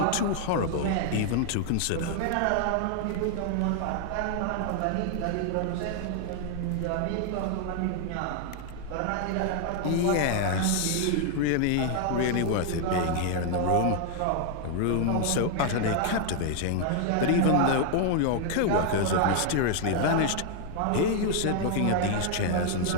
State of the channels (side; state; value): both; different; correlation 0.00